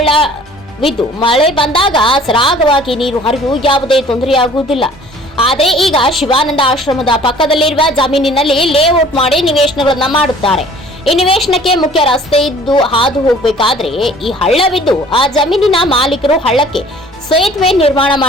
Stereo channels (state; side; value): normal; both; correlation 0.51